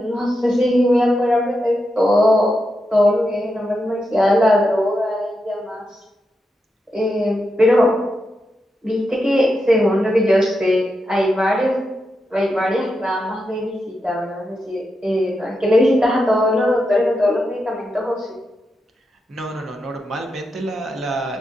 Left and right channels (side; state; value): both; normal; correlation 0.86